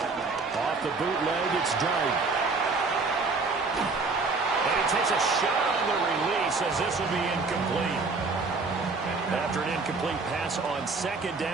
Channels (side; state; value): left; quieter; 4.0 dB